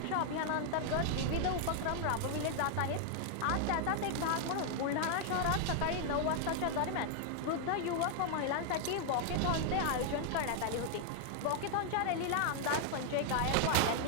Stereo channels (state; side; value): different; both; correlation 0.00